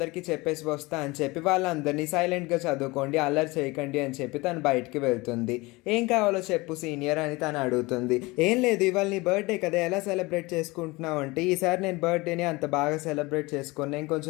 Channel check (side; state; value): right; quieter; 23.0 dB